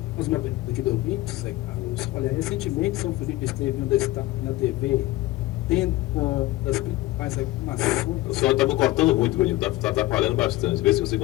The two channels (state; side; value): quieter; right; 17.8 dB